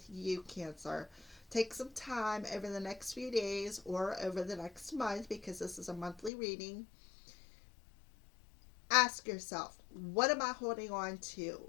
you, Cancer. Take some time over the next few days or over the next month, because this is a monthly reading. Ask yourself, what am I holding on to?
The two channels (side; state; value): right; drops out; at 6.3 s